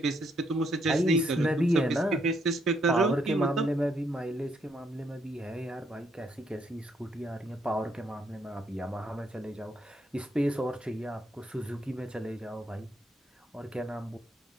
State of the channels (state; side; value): normal; both; correlation 0.73